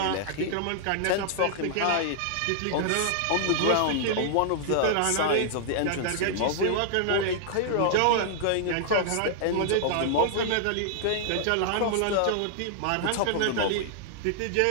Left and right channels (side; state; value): both; different; correlation -0.01